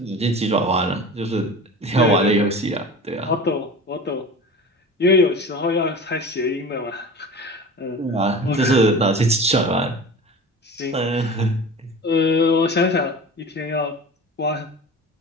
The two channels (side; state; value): both; normal; correlation 0.35